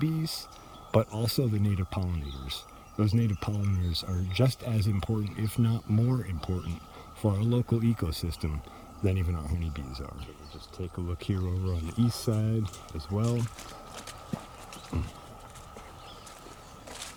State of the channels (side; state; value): both; identical; correlation 1.00